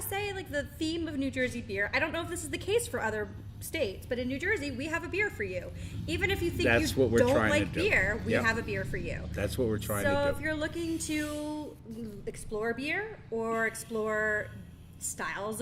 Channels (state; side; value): identical; both; correlation 1.00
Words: say like the theme of New Jersey beer. I don't know if this is the case for other states, but in New Jersey we have a beer for you. Even if you think That's you what we're don't trying to like do. beer, we Yep. have a beer for you. That's what we're trying So to if do. you're looking to explore beer or explore styles